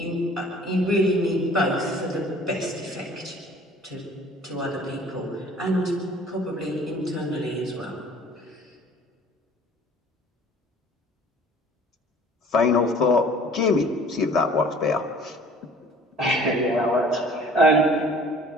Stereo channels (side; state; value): both; normal; correlation 0.50